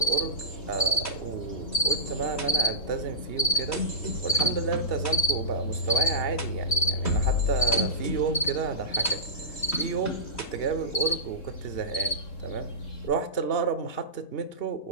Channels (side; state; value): right; late; 3.7 ms